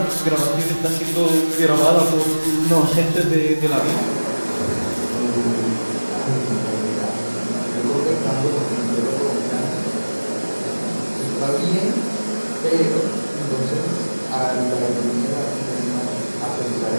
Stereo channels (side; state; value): both; inverted; correlation -1.00